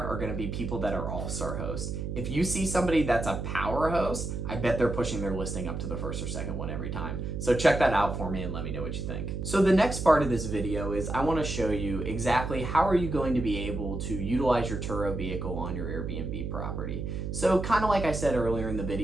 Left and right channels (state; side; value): noise; right; hum, 4 dB below the sound